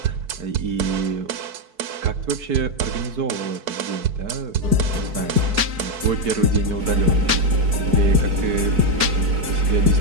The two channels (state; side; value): late; left; 4.6 ms